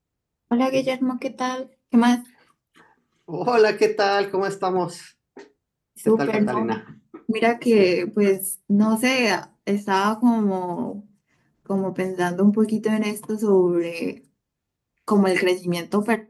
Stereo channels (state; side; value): identical; both; correlation 1.00